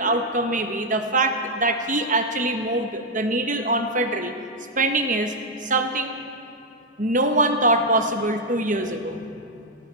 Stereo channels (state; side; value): normal; both; correlation 0.00